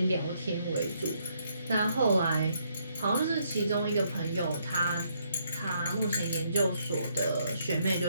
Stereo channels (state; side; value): inverted; both; correlation -0.73